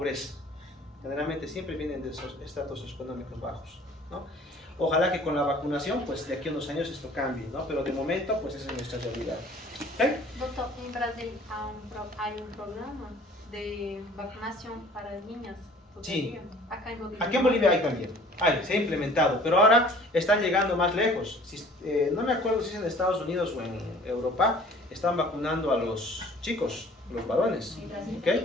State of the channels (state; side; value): normal; both; correlation 0.51